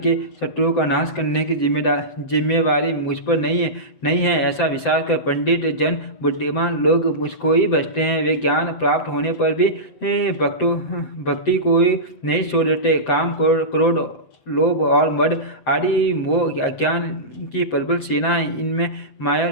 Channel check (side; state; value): right; late; 7.7 ms